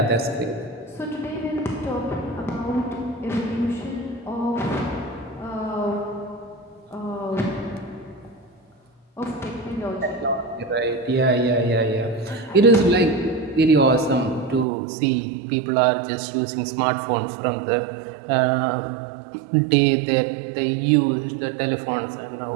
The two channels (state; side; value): drops out; left; at 14.7 s